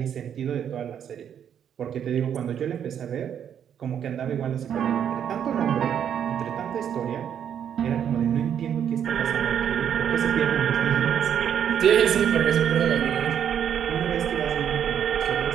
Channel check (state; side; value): quieter; left; 8.8 dB